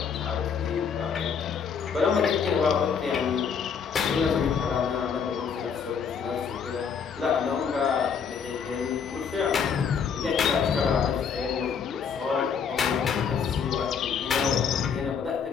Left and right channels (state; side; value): quieter; right; 6.6 dB